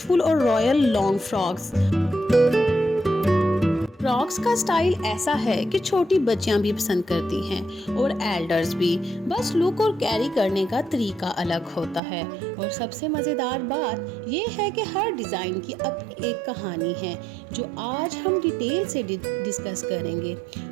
और रॉयल लॉन्ग फ्रॉक्स। फ्रॉक्स का स्टाइल ऐसा है कि छोटी बच्चियां भी पसंद करती हैं और एल्डर्स भी। बस लुक और कैरी करने का तरीका अलग होता है। और सबसे मज़ेदार बात ये है कि हर डिज़ाइन की अपनी एक कहानी है जो आज हम डिटेल से डिस्कस करेंगे।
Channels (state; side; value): drops out; left; at 12.0 s